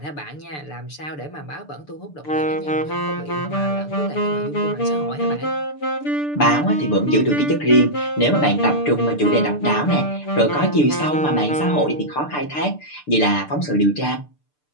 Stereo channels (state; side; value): late; right; 6.8 ms